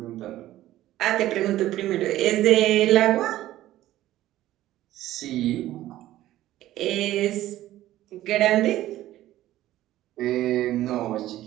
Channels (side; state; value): left; quieter; 14.5 dB